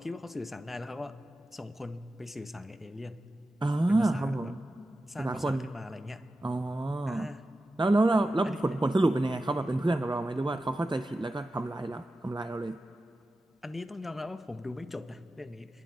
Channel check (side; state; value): both; normal; correlation 0.92